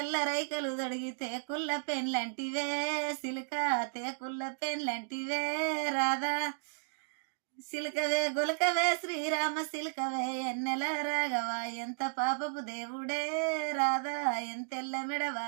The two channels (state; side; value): silent; left; digital silence